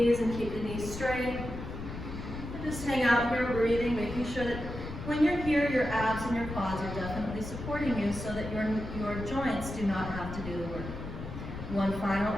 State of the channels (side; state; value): left; noise; rumble, 8 dB below the sound